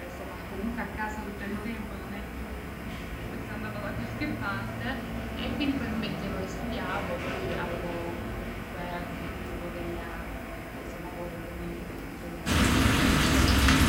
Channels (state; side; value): identical; both; correlation 1.00